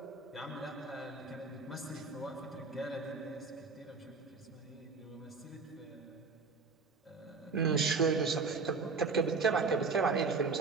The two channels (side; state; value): left; quieter; 4.4 dB